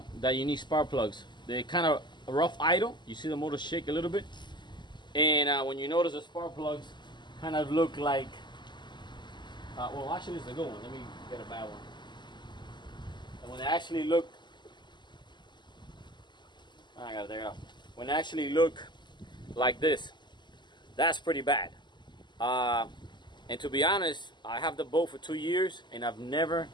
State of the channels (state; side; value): late; right; 0.21 ms